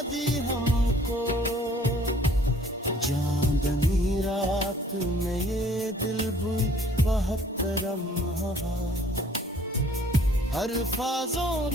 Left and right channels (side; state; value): both; normal; correlation 0.57